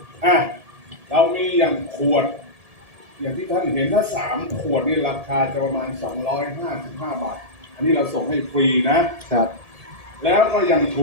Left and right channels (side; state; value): left; late; 1.8 ms